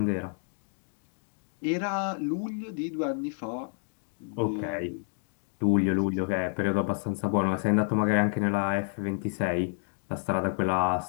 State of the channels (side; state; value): right; silent; 58 dB below the other